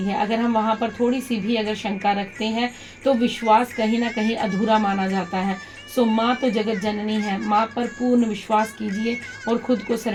है। अगर हम वहाँ पर थोड़ी सी भी अगर शंका रखते हैं तो विश्वास कहीं ना कहीं अधूरा माना जाता है। सो माँ तो जगत जननी है, माँ पर पूर्ण विश्वास कीजिए और खुद को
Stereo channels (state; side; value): identical; both; correlation 1.00